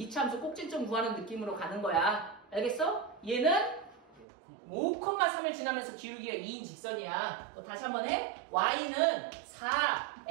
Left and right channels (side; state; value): left; drops out; at 4.2 s